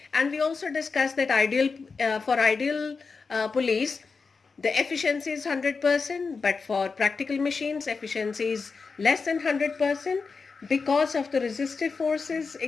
And we also discussed that for ideal pulleys the efficiency is 100%, but for practical machines, efficiency is less than 100% because of the resistive forces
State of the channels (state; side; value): quieter; right; 4.7 dB